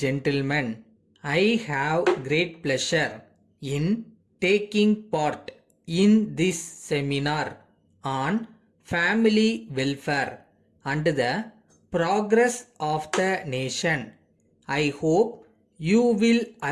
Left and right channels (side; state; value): both; identical; correlation 1.00